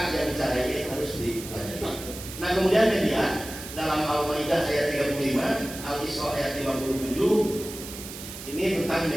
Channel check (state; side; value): noise; right; hiss, 11 dB below the sound